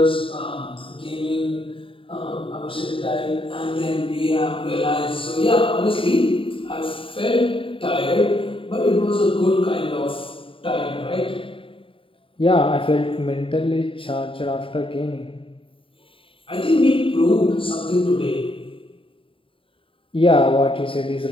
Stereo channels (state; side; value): late; right; 0.25 ms